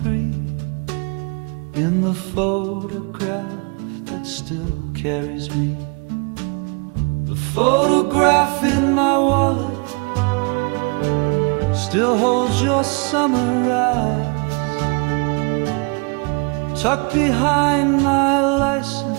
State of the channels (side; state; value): left; quieter; 31.4 dB